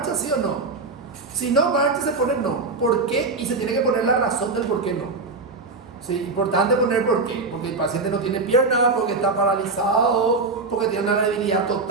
sí o no? Si no marcha, se pone no. ¿Por qué? Y se tiene que poner la razón del por qué no. Sí, importante poner por qué. Porque el paciente no tiene pierna, porque está paralizado, porque tiene una debilidad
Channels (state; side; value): quieter; left; 3.8 dB